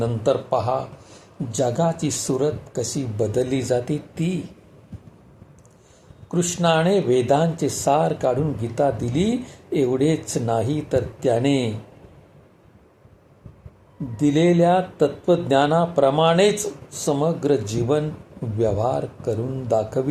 पहा जगाची सूरत कशी बदलली जाते ती. कृष्णाने वेदांचे सार काढून गीता दिली. एवढेच नाही तर त्याने दिलेल्या तत्वज्ञानाप्रमाणेच समग्र जीवन व्यवहार करून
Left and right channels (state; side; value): identical; both; correlation 1.00